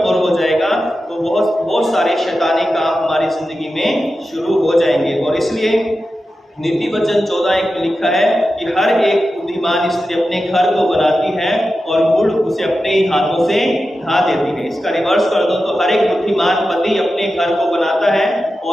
हो जाएगा तो बहुत सारे शैतानी काम हमारी जिंदगी में शुरू हो जाएंगे। और इसलिए नीति वचन 14:1 में लिखा है कि हर एक बुद्धिमान स्त्री अपने घर को बनाती है और मूढ़ उसे अपने ही हाथों से ढा देती है। इसका रिवर्स कर दो तो हर एक बुद्धिमान पति अपने घर को बनाता है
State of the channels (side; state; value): both; normal; correlation 0.92